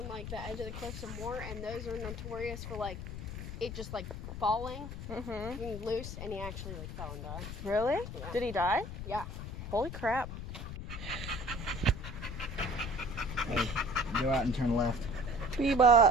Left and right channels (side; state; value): left; noise; rumble, 7 dB below the sound